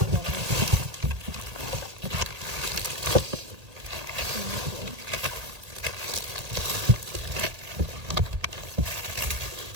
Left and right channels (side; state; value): left; late; 1.8 ms